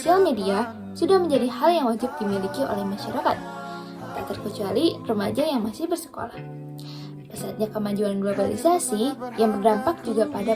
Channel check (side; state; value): both; identical; correlation 1.00